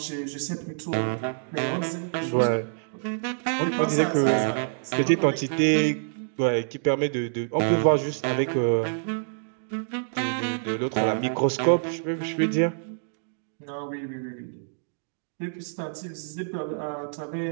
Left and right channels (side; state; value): left; silent; digital silence